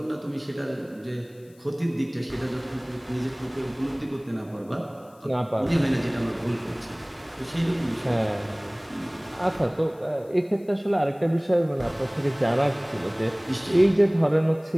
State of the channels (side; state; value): left; noise; hiss, 30 dB below the sound